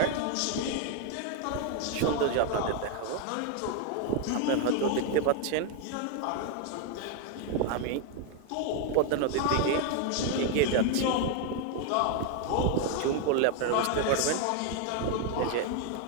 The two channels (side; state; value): both; different; correlation 0.01